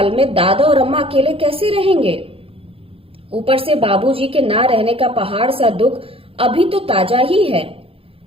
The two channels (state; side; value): late; left; 0.27 ms